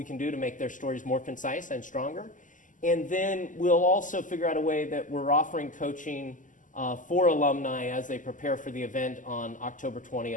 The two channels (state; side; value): late; right; 0.37 ms